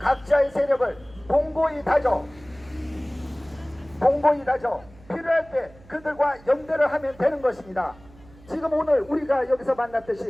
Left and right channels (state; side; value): noise; right; hum, 24 dB below the sound